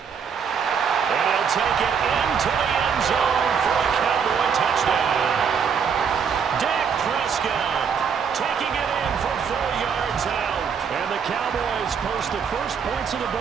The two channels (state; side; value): quieter; left; 6.7 dB